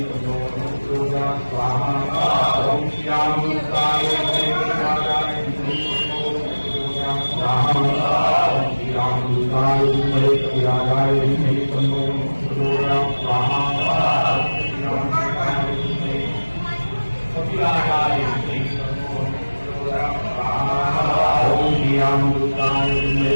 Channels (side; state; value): both; inverted; correlation -1.00